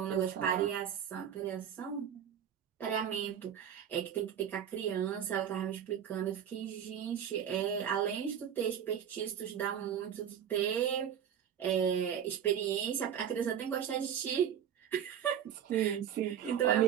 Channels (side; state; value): left; quieter; 9.1 dB